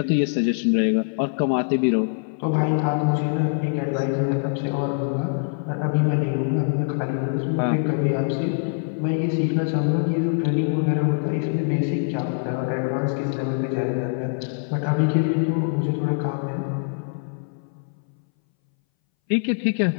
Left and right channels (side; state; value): right; silent; 61 dB below the other